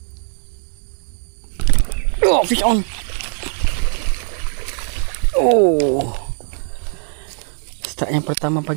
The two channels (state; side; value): silent; left; 63 dB below the other